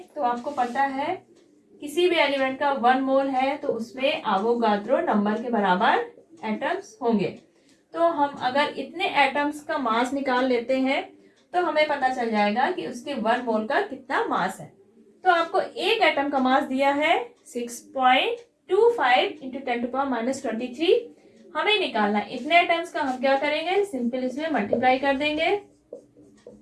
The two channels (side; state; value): both; identical; correlation 1.00